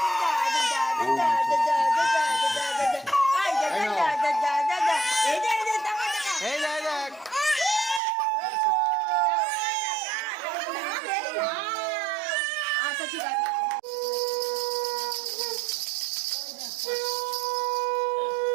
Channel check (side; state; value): left; drops out; at 8.0 s